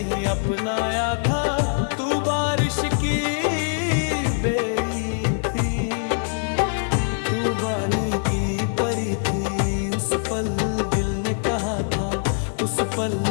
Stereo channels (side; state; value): right; silent; digital silence